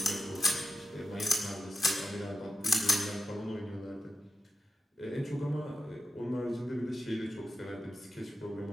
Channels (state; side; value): normal; both; correlation 0.90